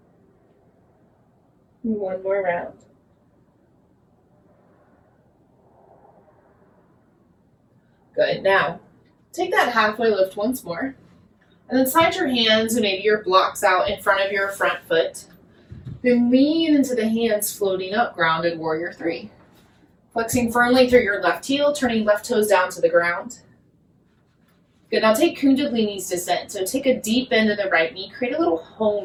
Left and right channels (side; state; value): both; identical; correlation 1.00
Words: 1 more round. Good, now take that halfway lift once more. And then slide your hands and maybe your blocks out in front of your front foot. Then lean into the hands floating up, grounded warrior 3. Flexing firmly through your left heel, turning left toes down to the ground. Good, now take Kundalini's descent. So take a deep bend in the right knee, create a little